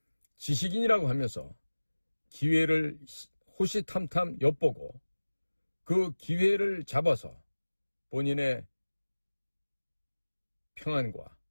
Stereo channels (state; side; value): inverted; both; correlation -1.00